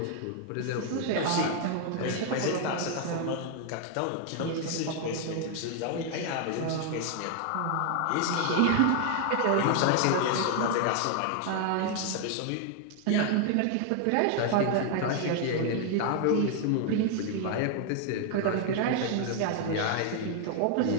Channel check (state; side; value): different; both; correlation 0.00